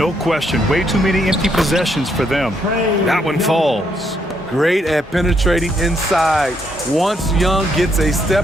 question. Way too many empty possessions for them. That one falls. Great at penetrating inside. Once Young gets a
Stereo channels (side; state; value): both; normal; correlation 0.74